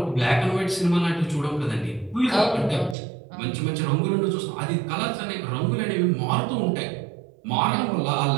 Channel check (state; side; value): drops out; left; at 3.0 s